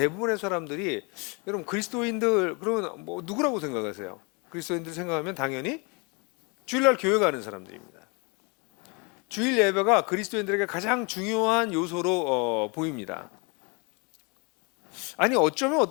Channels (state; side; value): quieter; right; 31.3 dB